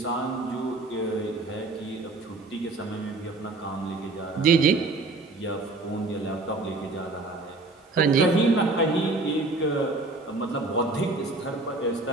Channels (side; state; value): left; quieter; 3.3 dB